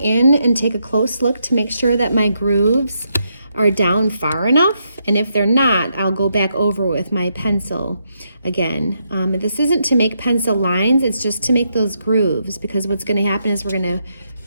and take a close look to make sure that my grooves are down far enough, and if they're not, I'll go back over with my pencil again. This isn't to make pencil lines, it's just to make those grooves, because what's going to happen is we're going to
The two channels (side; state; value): both; inverted; correlation -0.80